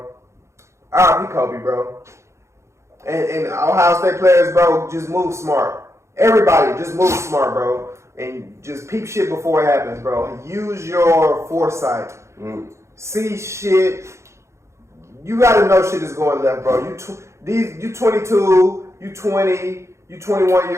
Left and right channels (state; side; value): late; left; 0.14 ms